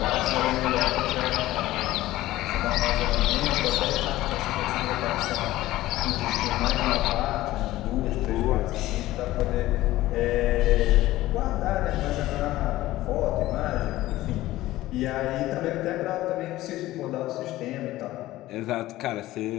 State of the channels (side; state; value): right; quieter; 16.3 dB